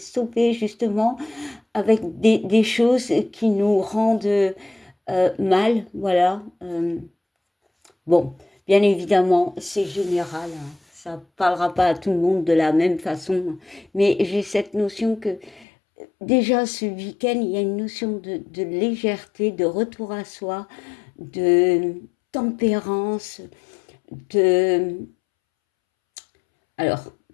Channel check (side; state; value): right; drops out; at 15.7 s